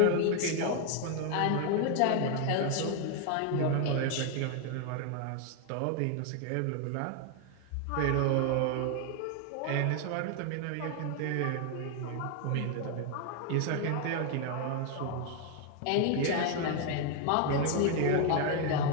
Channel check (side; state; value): both; different; correlation 0.00